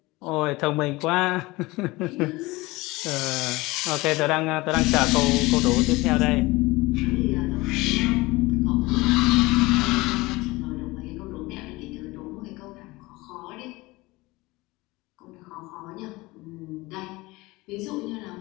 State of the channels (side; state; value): right; quieter; 21.6 dB